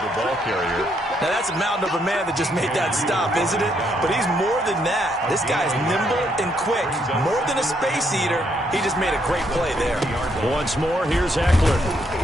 ball carrier. Now, that's a mountain of a man that just made that stop, isn't it? But he's more than that. This guy's nimble and quick. More than a space eater, he just made a great play there. Once more, here's Eckler.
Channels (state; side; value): normal; both; correlation 0.74